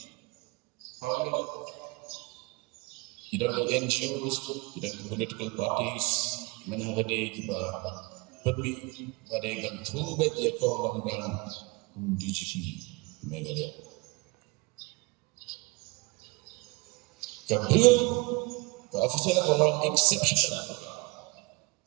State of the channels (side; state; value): left; quieter; 25.4 dB